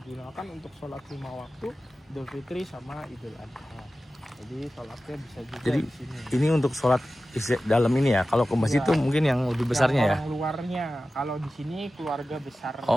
untuk sholat 5 waktu, Idul Fitri sama Idul Adha. Jadi sholatnya bisa juga Jadi di sini. ini untuk sholat dalam ini ya. Kalau ke masjid Ya. itu mungkin yang lebih besarnya ya. Yang luarnya, kalau di sini keluarga besar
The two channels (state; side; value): normal; both; correlation 0.95